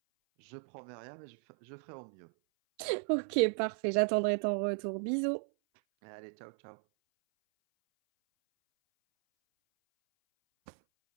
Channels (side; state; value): left; silent; 55 dB below the other